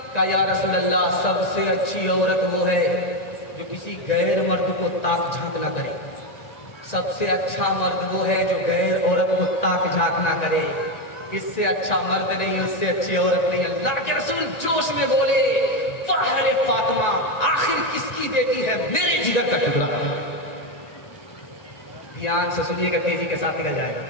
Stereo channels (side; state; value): right; late; 1.9 ms